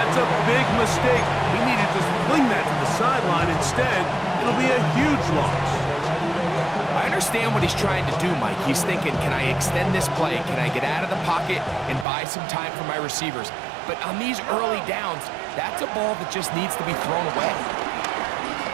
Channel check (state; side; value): drops out; left; at 12.1 s